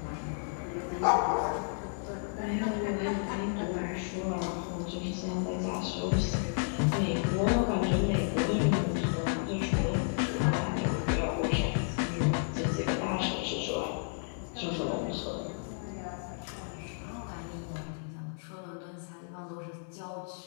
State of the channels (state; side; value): silent; right; 56 dB below the other